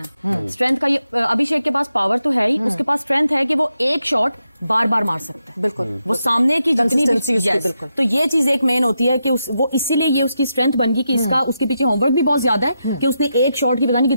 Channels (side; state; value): both; inverted; correlation -0.85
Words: है। स्ट्रेंथ का ये अभिषेक के पास पावर तो है ही, उसके पास स्ट्रेंथ है कि वो एक शॉट बार बार मार सकता है। बिल्कुल, वो सामने की जितनी Consistency उसकी, yes, बिल्कुल। तो ये चीज एक मेन होती है कि वो इसीलिए ये उसकी स्ट्रेंथ बन गई कि इसका उसके पीछे होमवर्क भी बहुत ज्यादा है कि उसने एक शॉट की पता नहीं